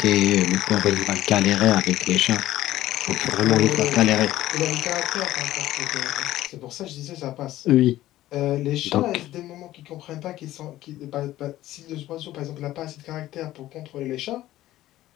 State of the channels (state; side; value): quieter; right; 14.9 dB